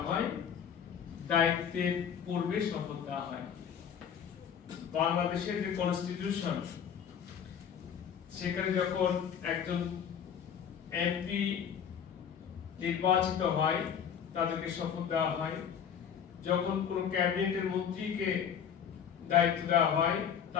হয়, দায়িত্বের পূর্বে শপথ দেওয়া হয়। বাংলাদেশের যে কনস্টিটিউশন, সেখানে যখন একজন এমপি নির্বাচিত হয় তাদেরকে শপথ দেওয়া হয়, যখন কোন ক্যাবিনেটের মন্ত্রীকে দায়িত্ব দেওয়া হয়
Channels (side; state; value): right; quieter; 8.1 dB